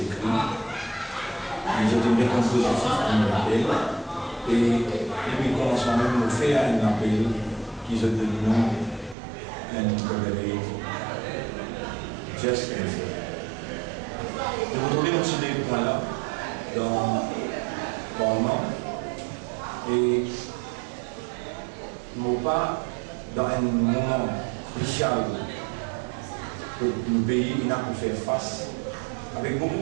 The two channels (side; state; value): left; drops out; at 9.2 s